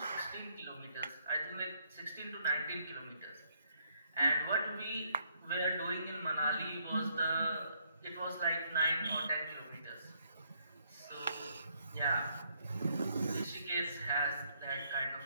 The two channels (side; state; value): both; inverted; correlation -0.70